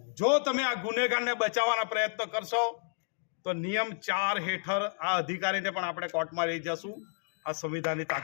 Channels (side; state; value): right; silent; 57 dB below the other